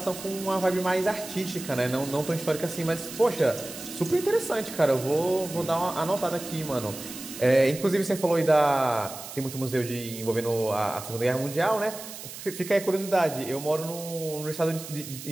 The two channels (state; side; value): noise; right; hiss, 12 dB below the sound